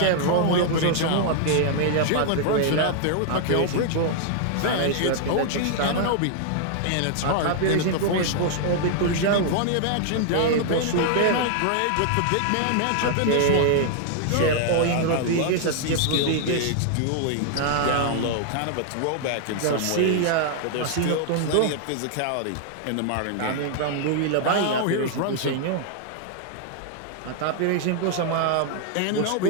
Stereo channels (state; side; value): different; both; correlation 0.00